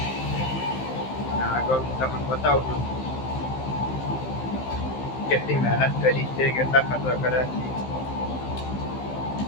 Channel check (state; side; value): late; right; 15 ms